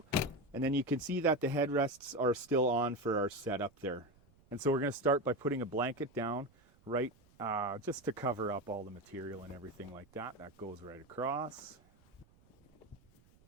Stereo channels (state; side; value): noise; right; rumble, 30 dB below the sound